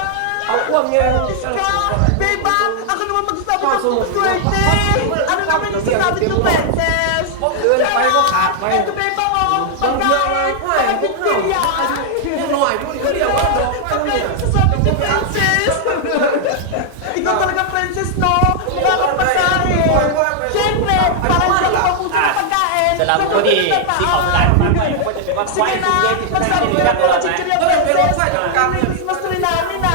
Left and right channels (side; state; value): both; different; correlation -0.01